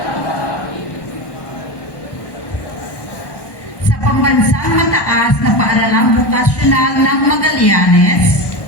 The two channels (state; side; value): late; right; 1.1 ms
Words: sa pambansang mataas na paaralang vokasyonal ng Magallanes,